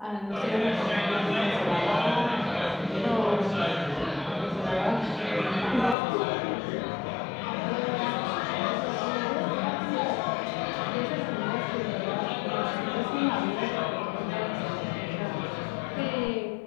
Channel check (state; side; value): drops out; right; at 6.0 s